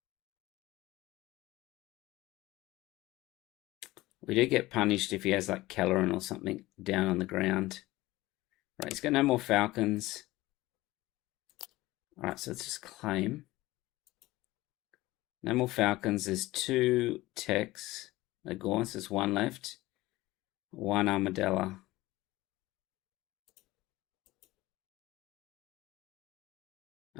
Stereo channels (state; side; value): quieter; right; 18.6 dB